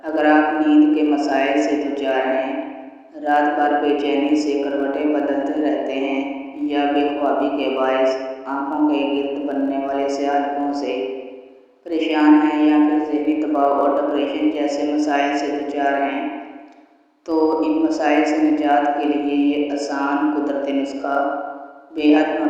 اگر آپ نیند کے مسائل سے دوچار ہیں، رات بھر بے چینی سے کروٹیں بدلتے رہتے ہیں یا بے خوابی کے باعث آنکھوں کے گرد بننے والے سیاہ دھبوں سے پریشان ہیں، یا پھر ذہنی دباؤ اور ڈپریشن جیسے مسائل سے دوچار ہیں، تو ان مسائل سے نجات کے لیے یہ آسان قدرتی نسخہ بے حد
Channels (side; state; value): both; identical; correlation 1.00